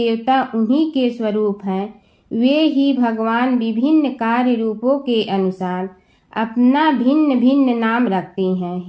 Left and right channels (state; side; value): identical; both; correlation 1.00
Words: उन्हीं के स्वरूप हैं, वे ही भगवान विभिन्न कार्य रूपों के अनुसार अपना भिन्न भिन्न नाम रखते हैं।